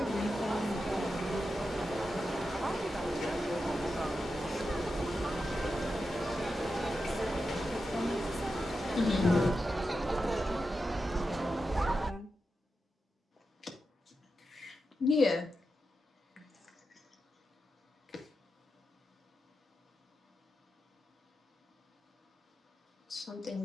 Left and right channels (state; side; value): normal; both; correlation 0.89